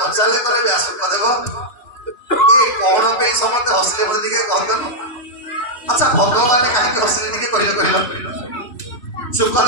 କଲେ ବ୍ୟାସ ଶୁକଦେବ ଏ କଣ ପାଇଁ ସମସ୍ତେ ହସିଲେ ବୋଲି ଟିକେ କହନ୍ତନି। ଆଚ୍ଛା ଭଗବାନ କାହିଁକି ହସିଲେ ଟିକେ କହିଲେ କହିଲ।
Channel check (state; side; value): late; right; 3.1 ms